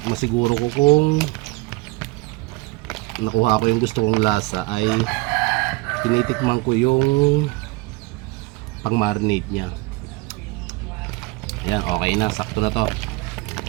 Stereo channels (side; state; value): left; quieter; 22.5 dB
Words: masiguro ko kung nakuha ko yung gusto kong lasa, ay tinitikman ko yung pang-marinate niya. Ayan, okay na, sakto na to.